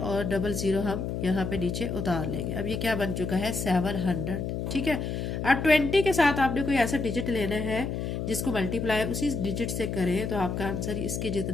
00 हम यहाँ पे नीचे उतार लेंगे। अब ये क्या बन चुका है, 700। ठीक है, अब 20 के साथ आपने कोई ऐसा डिजिट लेना है जिसको मल्टीप्लाई उसी डिजिट से करें तो आपका आंसर इसके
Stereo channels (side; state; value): left; noise; hum, 3 dB below the sound